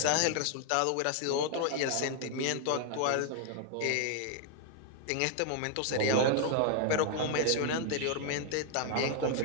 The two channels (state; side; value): different; both; correlation 0.00